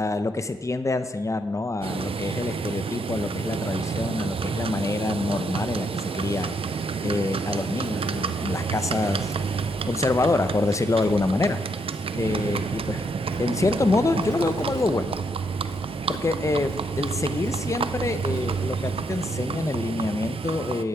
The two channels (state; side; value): normal; both; correlation 0.75